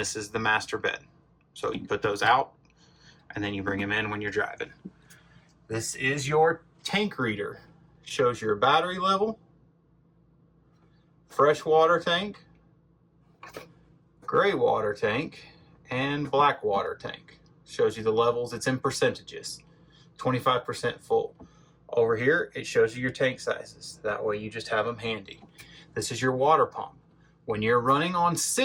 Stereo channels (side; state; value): both; identical; correlation 1.00